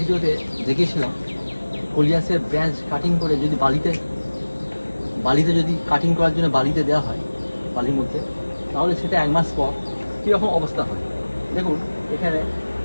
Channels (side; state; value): both; inverted; correlation -1.00